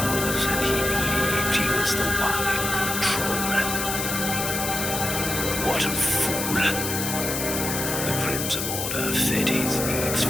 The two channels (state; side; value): noise; left; hiss, 3 dB below the sound